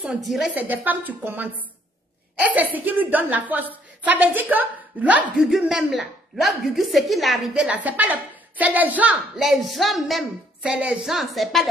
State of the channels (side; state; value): both; normal; correlation 0.66